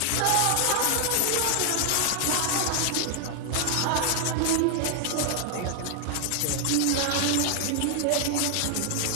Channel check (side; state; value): both; different; correlation 0.00